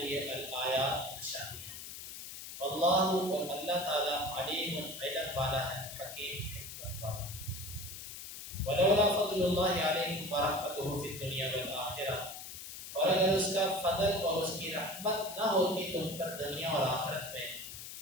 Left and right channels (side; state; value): left; noise; hiss, 10 dB below the sound